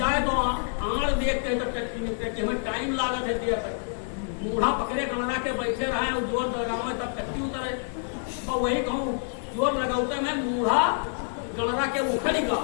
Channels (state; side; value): silent; right; digital silence